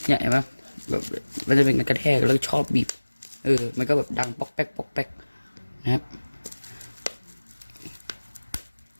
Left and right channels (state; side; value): inverted; both; correlation -1.00